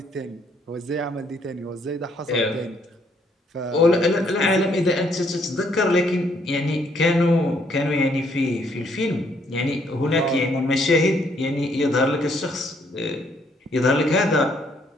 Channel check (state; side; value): normal; both; correlation 0.68